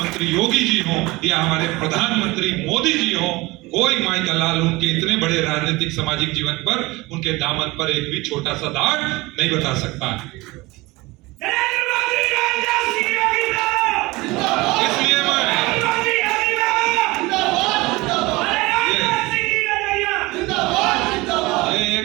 योगी जी हो या हमारे प्रधानमंत्री मोदी जी हो, कोई माई का लाल उनके इतने बड़े राजनीतिक सामाजिक जीवन पर, उनके दामन पर एक भी छोटा सा दाग नहीं बता सकता। इसलिए मैं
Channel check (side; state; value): left; quieter; 21.9 dB